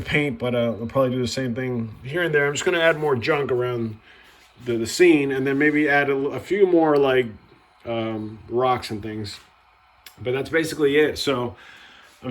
paint, but I'll probably do the same thing here and there. I'm just going to add more junk around the scene, and then maybe add a few more like rocks and things. But that's basically it. So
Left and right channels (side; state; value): both; identical; correlation 1.00